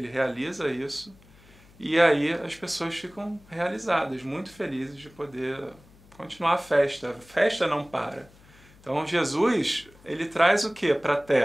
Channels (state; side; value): noise; left; hum, 26 dB below the sound